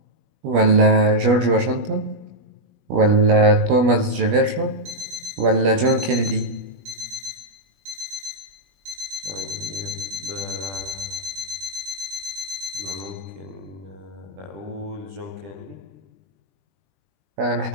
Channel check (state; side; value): late; left; 21 ms